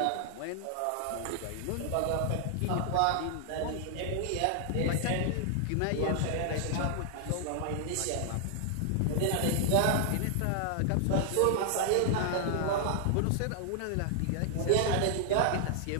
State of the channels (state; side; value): different; both; correlation 0.00